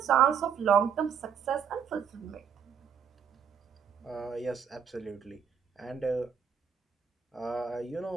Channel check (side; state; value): left; quieter; 7.2 dB